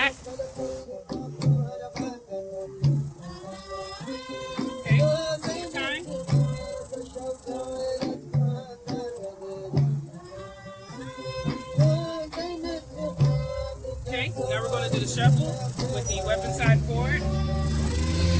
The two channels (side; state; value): both; identical; correlation 1.00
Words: Now we're going to do the shuffle with the weapon side forward.